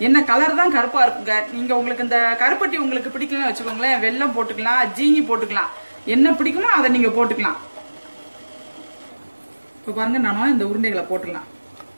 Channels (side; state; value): both; inverted; correlation -1.00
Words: என்ன கலர் தான் கருப்பா இருக்குங்க. நீங்க உங்களுக்கு இந்த கருப்பட்டி உங்களுக்கு பிடிக்கலன்னு வச்சுக்கோங்களேன், வெல்லம் போட்டுக்கலாம், ஜீனி போட்டுக்கலாம், என்ன பிடிக்குமோ அதை நீங்க போட்டுக்கலாம். இப்ப பாருங்க, நானும் இந்த உருண்டைகளை போட்டுக்கலாம்.